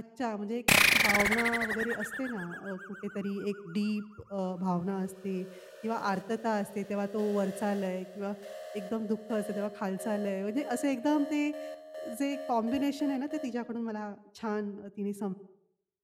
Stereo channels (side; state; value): both; identical; correlation 1.00